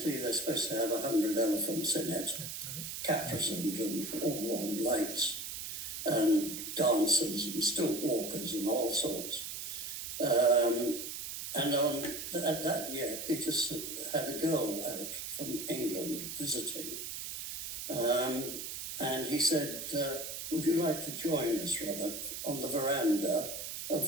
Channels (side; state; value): right; noise; hiss, 6 dB below the sound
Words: they're supposed to have 100 elephants in it, caparisoned and all on lights, and dancers and stilt walkers and all sorts. And on that year, Peter had a girl out from England visiting. And he said, "Would you like to join us, Robert, on the veranda of